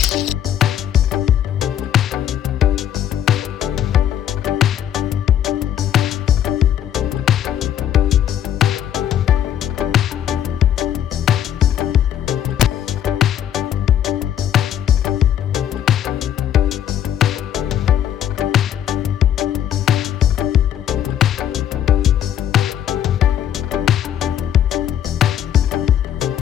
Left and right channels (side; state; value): right; quieter; 10.2 dB